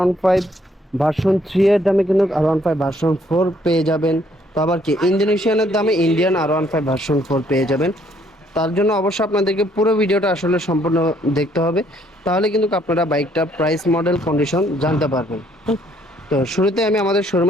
ভার্সন 3 এর দামে কিন্তু R15 ভার্সন 4 পেয়ে যাবেন। তো আবার কি ইন্দোনেশিয়ানের দামে ইন্ডিয়ান R15 ভার্সন 4 পেয়ে যাবেন। তার জন্য অবশ্যই আপনাদেরকে পুরো ভিডিওটা আসলে সম্পূর্ণ দেখতে হবে, তাহলে কিন্তু আপনারা বাইকটা প্রাইস, মডেল, কন্ডিশন জানতে পারবেন। তো শুরুতে আমি আমাদের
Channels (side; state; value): both; normal; correlation 0.66